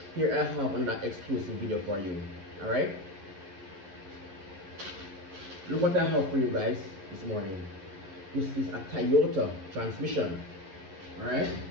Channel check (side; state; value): left; late; 11 ms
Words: Here I have another exclusive video for you. Alright? Look what I have for you guys this morning. This is a Toyota transmission. Alright?